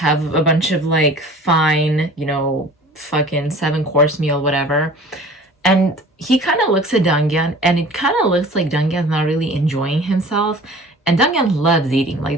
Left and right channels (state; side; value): normal; both; correlation 0.45